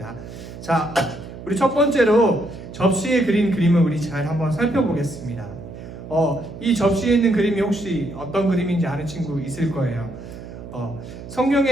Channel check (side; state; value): right; noise; hum, 13 dB below the sound